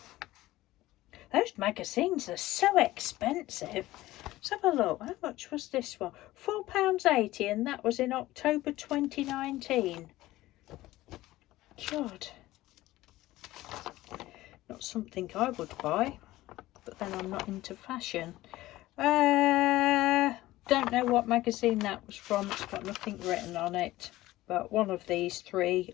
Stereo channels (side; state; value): right; quieter; 16.9 dB